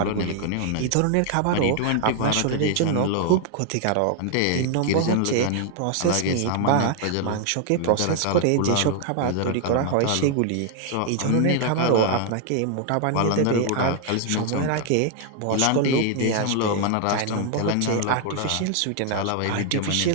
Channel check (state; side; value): different; both; correlation 0.00